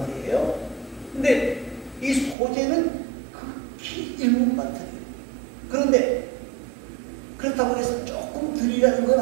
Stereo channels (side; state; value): left; drops out; at 2.4 s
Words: 근데 이 소재는 극히 일부만 드려요. 그런데 그렇다고 해서 조금 드리라는 건